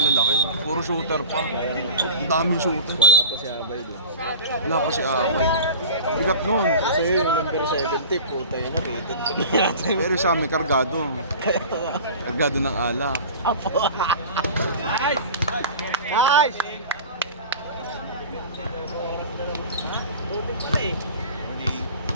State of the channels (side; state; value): both; inverted; correlation -0.37